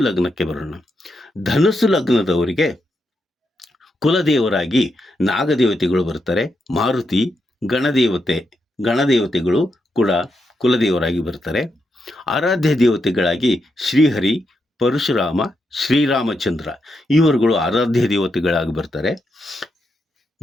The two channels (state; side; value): normal; both; correlation 0.83